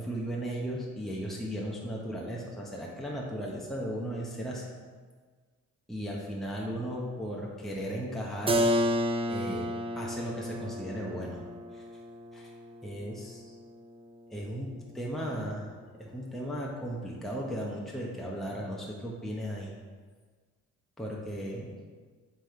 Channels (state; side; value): normal; both; correlation 0.56